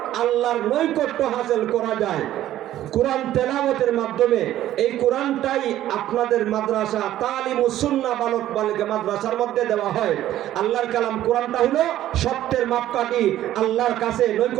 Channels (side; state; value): left; quieter; 13.1 dB